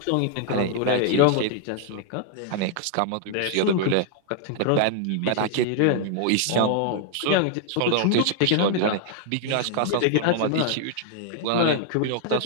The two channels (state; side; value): different; both; correlation 0.00